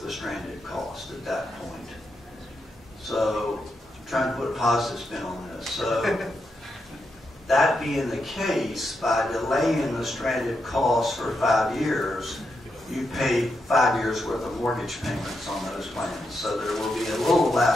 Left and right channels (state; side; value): normal; both; correlation 0.84